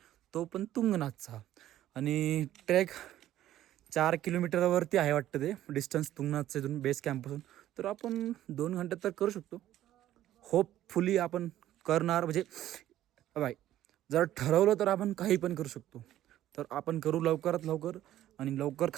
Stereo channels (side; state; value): left; quieter; 13.0 dB